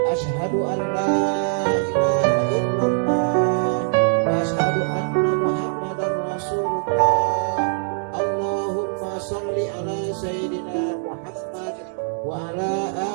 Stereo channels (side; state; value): left; silent; digital silence